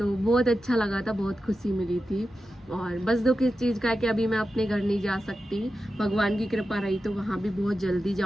बहुत अच्छा लगा था, बहुत खुशी मिली थी। और बस दुख इस चीज़ का है कि अभी मैं अपने घर नहीं जा सकती। भगवान की कृपा रही तो वहाँ भी बहुत जल्दी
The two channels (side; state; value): both; normal; correlation 0.91